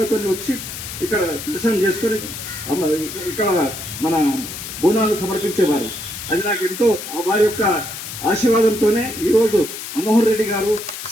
వచ్చి ఇక్కడ దర్శనం చేసుకొని ఇక్కడ మన బోనాలు సమర్పించేవారు. అది నాకు ఎంతో వారి యొక్క ఆశీర్వాదంతోనే ఈరోజు మనోహర్ రెడ్డి గారు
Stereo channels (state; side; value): noise; left; hiss, 9 dB below the sound